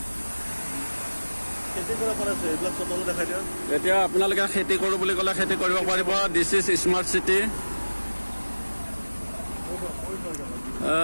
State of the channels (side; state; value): both; inverted; correlation -1.00